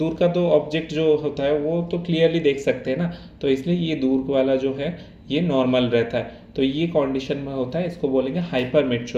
का तो ऑब्जेक्ट जो होता है वो तो क्लियरली देख सकते हैं ना, तो इसलिए ये दूर वाला जो है ये नॉर्मल रहता है। तो ये कंडीशन में होता है, इसको बोलेंगे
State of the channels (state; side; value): identical; both; correlation 1.00